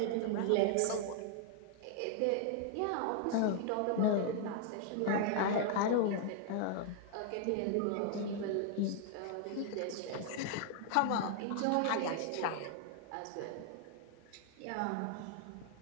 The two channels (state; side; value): different; both; correlation 0.00